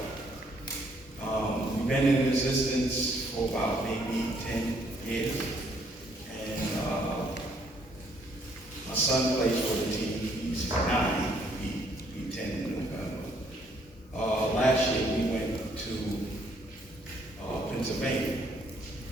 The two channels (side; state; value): both; normal; correlation 0.67